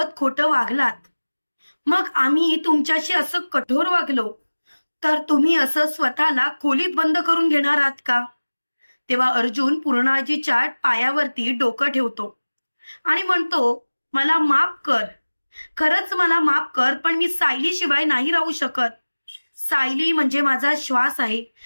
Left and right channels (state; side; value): inverted; both; correlation -1.00